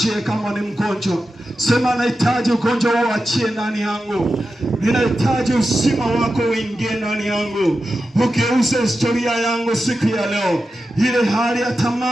kama ni mgonjwa. Sema nahitaji ugonjwa wao achie ndani yangu. Ninahitaji uzima wako uingie ndani yangu. Ugeuze historia yangu siku ya leo. Ile hali ya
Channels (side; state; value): both; normal; correlation 0.91